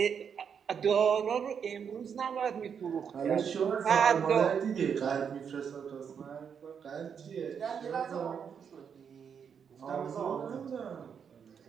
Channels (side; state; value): left; quieter; 7.2 dB